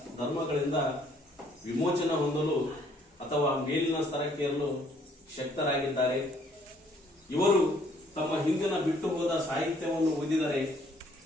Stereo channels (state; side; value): normal; both; correlation 0.63